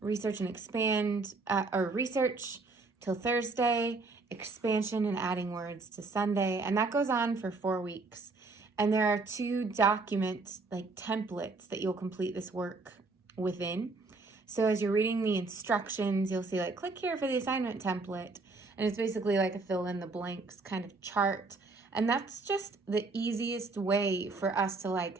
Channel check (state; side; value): quieter; left; 3.7 dB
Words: research and expand, or research till Thursday, expansion and adding words to Sunday, and that goes on for 4 weeks. And there are 2 document templates that you'll complete this work within. So as you're reading the instructions, you'll see click here for the assignment template. And it's basically like a fill in the blanks kind of chart. And that's just the easiest way for us to I